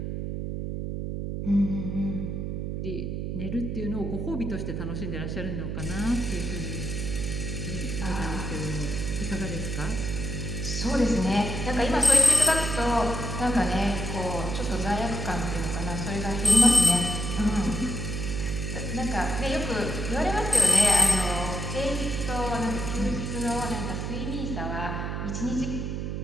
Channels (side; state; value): right; noise; hum, 3 dB below the sound